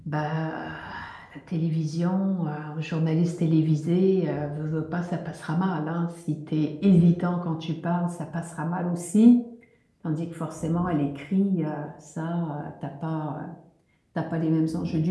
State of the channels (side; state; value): both; identical; correlation 1.00